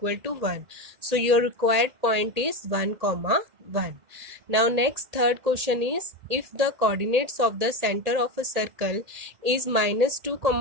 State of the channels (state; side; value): late; left; 1.8 ms